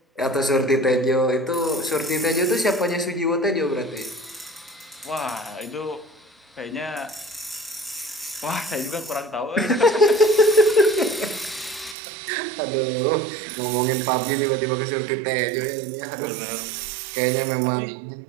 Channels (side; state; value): left; drops out; at 12.0 s